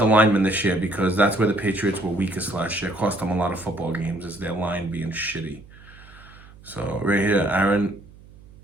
linemen this year because that's where the Patriots were weakest last year. Cost them a lot of football games is their line being shitty. So right here,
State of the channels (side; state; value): right; noise; hum, 22 dB below the sound